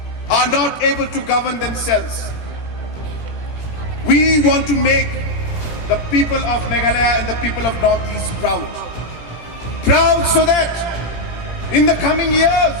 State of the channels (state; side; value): late; right; 17 ms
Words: are not able to govern themselves. We want to make the people of Meghalaya and the people of Northeast proud. Proud so that in the coming years,